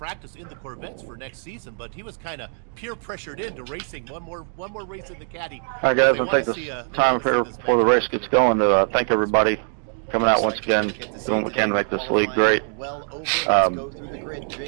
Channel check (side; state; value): left; silent; 63 dB below the other